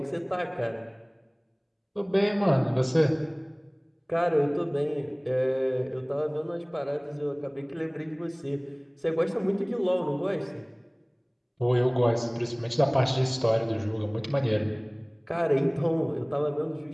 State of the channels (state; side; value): identical; both; correlation 1.00